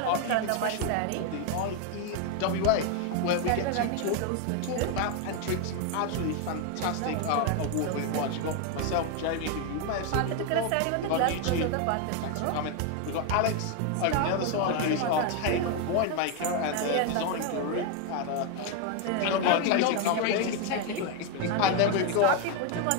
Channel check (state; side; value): different; both; correlation 0.01